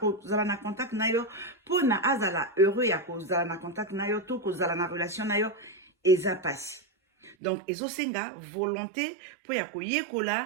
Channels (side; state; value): left; drops out; at 7.4 s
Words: na contact na yo pona azala heureux ya kozala na contact na yo to kozala na relation na yo eza pasi. Donc ezosenga volonté po ya